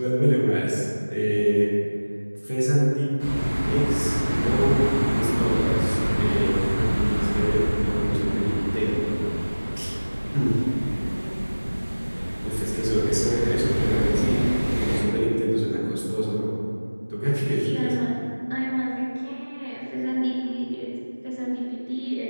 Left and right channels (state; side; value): inverted; both; correlation -1.00